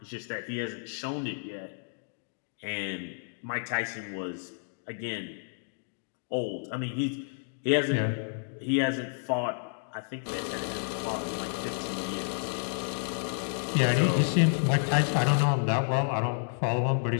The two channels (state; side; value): silent; right; digital silence